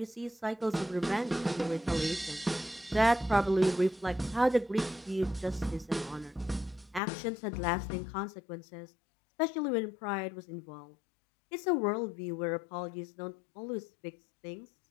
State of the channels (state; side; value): drops out; right; at 7.0 s